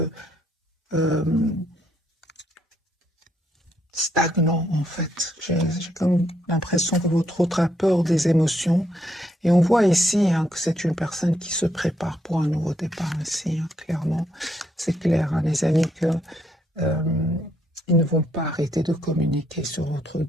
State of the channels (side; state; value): both; normal; correlation 0.74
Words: stagnant en fait. J'ai comme l'impression que votre autre a peur des émotions. Et on voit ici hein, que c'est une personne qui se prépare pour un nouveau départ ici, hein, clairement. C'est clair, hein, les amis, que ils ne vont pas arrêter de communiquer sur votre